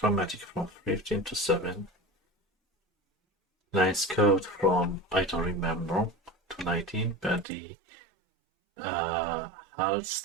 from 15 to 7. Nice code from, I don't remember, to 19, but the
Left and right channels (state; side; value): drops out; left; at 7.5 s